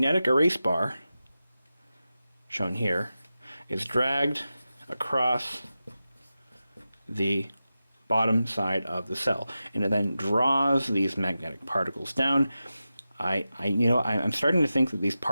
erase bar, shown here, is dragged across the bottom side of the cell, and it then draws these magnetic particles down. I'm starting to think that these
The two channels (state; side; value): inverted; both; correlation -0.93